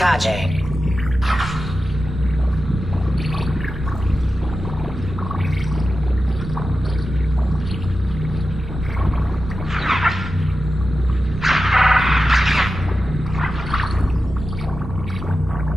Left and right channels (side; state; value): both; normal; correlation 0.92